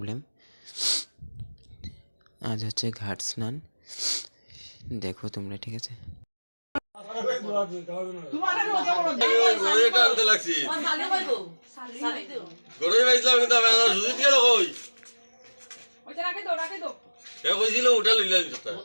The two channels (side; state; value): both; inverted; correlation -1.00